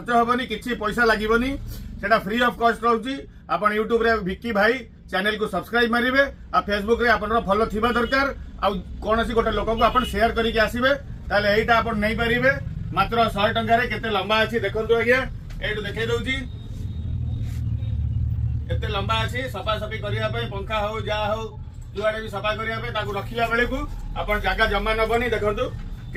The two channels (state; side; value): identical; both; correlation 1.00